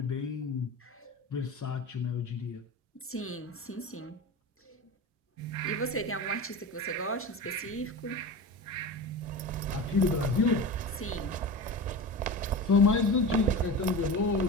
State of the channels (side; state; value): both; normal; correlation 0.28